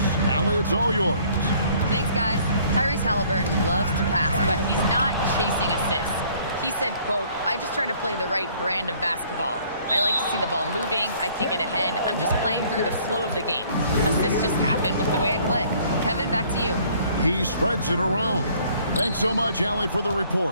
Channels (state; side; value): inverted; both; correlation -0.59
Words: Allie, it's all yours. Thanks, guys. Tyrese Halliburton loves to pass, but he's not chasing assists. He said, quote, "I just try to play the right brand of basketball. I like to see the ball moving. I kick it ahead. I'm just playing through the flow of the game. Assists just happen with the way I play." Kevin, back to you. He spreads it around. Thanks so much, Allie, for the